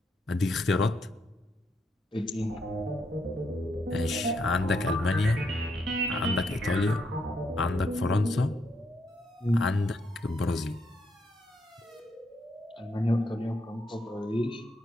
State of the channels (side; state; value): both; normal; correlation 0.77